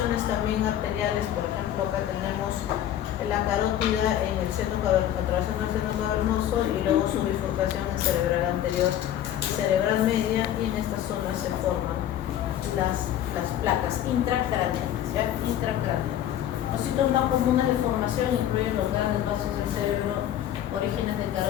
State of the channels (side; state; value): right; quieter; 11.4 dB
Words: también arteriales. Por ejemplo, acá tenemos la carótida en el seno atravesando el seno cavernoso y luego su bifurcación en cerebral anterior y cerebral media, y en estas zonas se forman las placas intracraneales, ¿ya? Intracraneales. Los sitios más comunes de formación incluyen los grandes vasos del cerebro, orígenes de